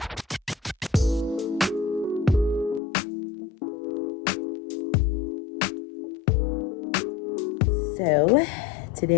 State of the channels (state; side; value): drops out; right; at 2.8 s